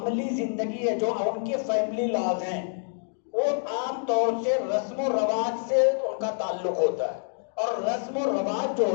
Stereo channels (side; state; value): right; silent; digital silence